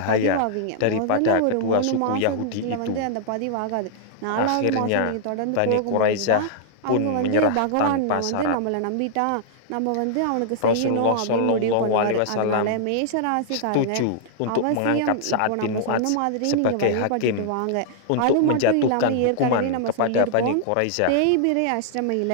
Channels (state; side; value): different; both; correlation -0.01